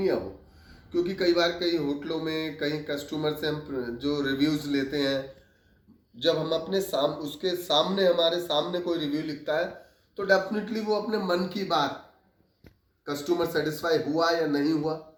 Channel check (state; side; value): identical; both; correlation 1.00